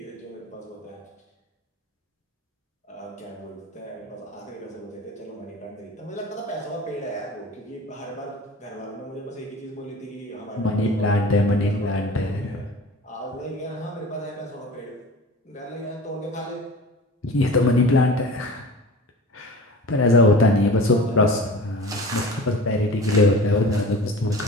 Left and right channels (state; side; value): normal; both; correlation 0.38